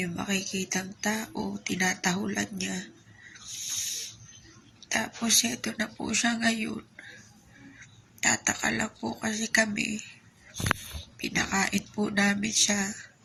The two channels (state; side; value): identical; both; correlation 1.00